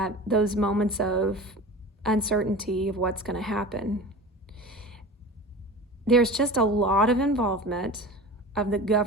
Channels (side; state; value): both; normal; correlation 0.34